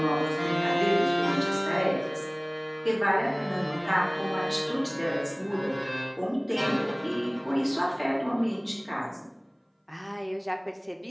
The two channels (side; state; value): both; identical; correlation 1.00